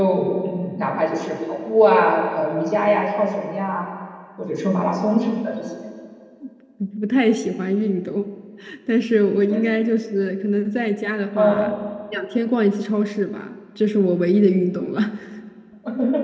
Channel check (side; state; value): both; identical; correlation 1.00